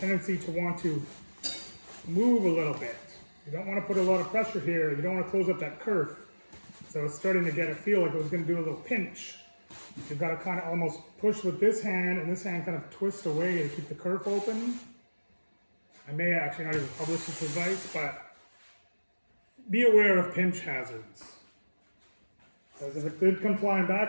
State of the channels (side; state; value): both; inverted; correlation -1.00